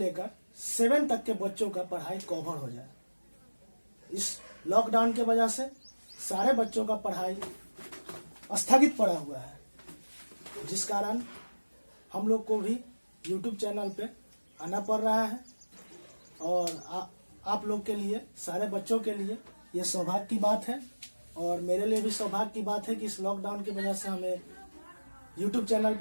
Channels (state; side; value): inverted; both; correlation -1.00